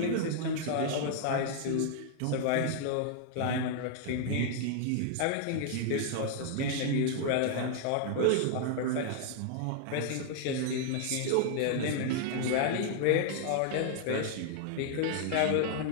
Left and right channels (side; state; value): both; different; correlation -0.01